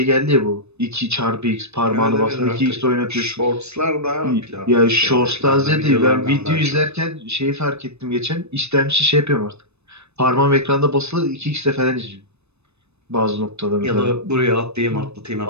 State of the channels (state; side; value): late; left; 0.81 ms